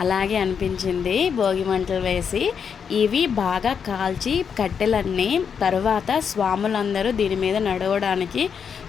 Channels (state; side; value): quieter; right; 6.9 dB